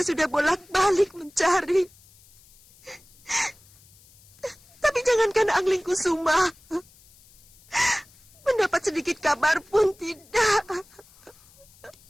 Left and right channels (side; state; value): left; noise; hiss, 27 dB below the sound